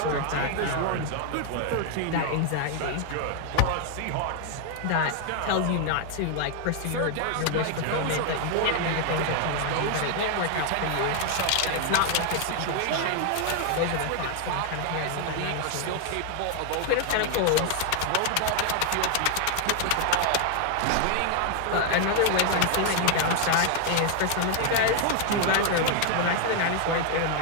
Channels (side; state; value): both; different; correlation 0.00